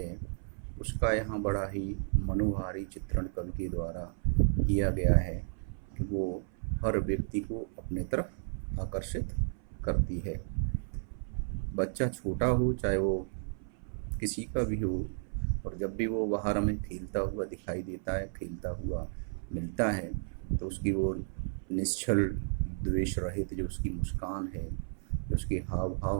उसका यहाँ बड़ा ही मनोहारी चित्रण कवि के द्वारा किया गया है कि वो हर व्यक्ति को अपने तरफ आकर्षित करती है। बच्चा छोटा हो, चाहे वो किसी का भी हो, और जब भी वो बाहर हमें खेलता हुआ दिखाई देता है, खेलता हुआ मिलता है, तो उसकी वो निश्चल द्वेष रहित जो उसकी मुस्कान है, जो उसके हाव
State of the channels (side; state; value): left; silent; 56 dB below the other